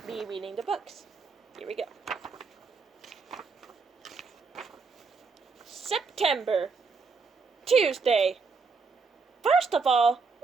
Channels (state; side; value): quieter; left; 4.7 dB